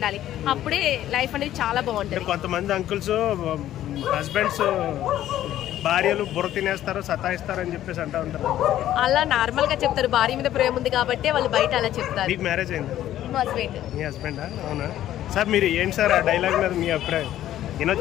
అప్పుడే లైఫ్ అనేది చాలా బాగుంటుంది. కొంతమంది అంకుల్స్ హస్బెండ్స్ భార్యలు బుర్ర తినేస్తారు, సతాయిస్తారు అని చెప్పేసి అంటూ ఉంటారు. అలా నార్మల్ గా చెప్తారు, భార్య మీద ప్రేమ ఉంది కాబట్టి వాళ్ళు బయట అలా చెప్తారు. మీకు మ్యారేజ్ అయింది? హస్బెండ్. మీ హస్బెండా? అవునా సార్. మీరు ఏంటి సార్ ఆ డైలాగ్ మీద మీ అభిప్రాయం?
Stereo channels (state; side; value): quieter; right; 12.6 dB